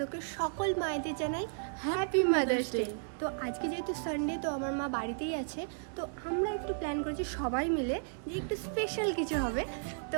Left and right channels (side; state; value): left; silent; digital silence